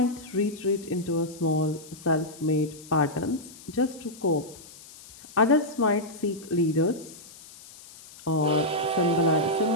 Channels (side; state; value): left; noise; hiss, 19 dB below the sound